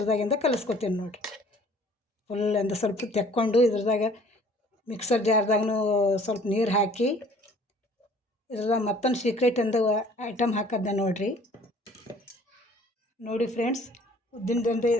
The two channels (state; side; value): normal; both; correlation 0.54